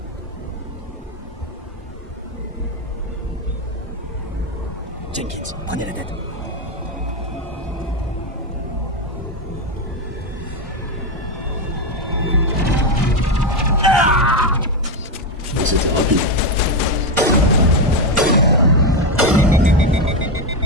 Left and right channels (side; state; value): both; normal; correlation 0.09